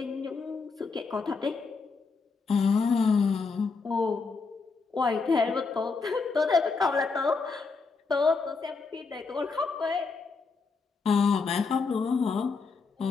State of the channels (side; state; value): right; quieter; 4.6 dB